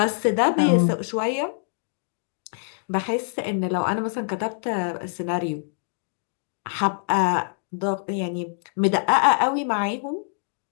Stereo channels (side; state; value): right; silent; digital silence